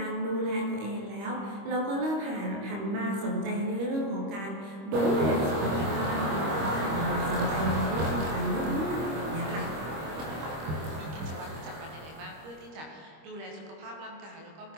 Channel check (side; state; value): left; late; 25 ms